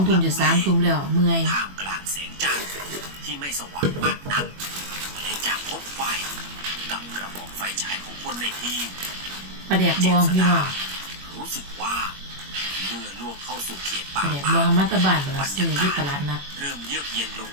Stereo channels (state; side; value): late; left; 21 ms